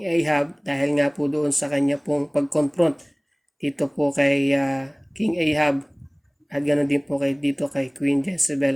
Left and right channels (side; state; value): both; identical; correlation 1.00